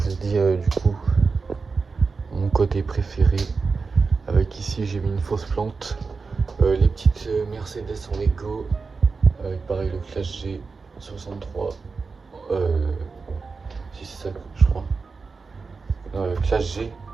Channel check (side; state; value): left; quieter; 4.6 dB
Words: vous dis, du coup, mon côté préféré. Avec ici, j'ai mis une fausse plante. Les petites Mercedes en Lego. Avec pareil le Clash G 63. Si c'est ça, je crois. Classe G,